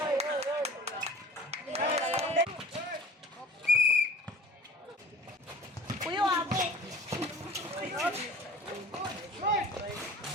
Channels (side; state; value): both; normal; correlation 0.44